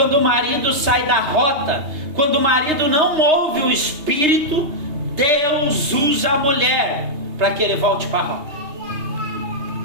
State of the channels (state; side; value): late; left; 3.3 ms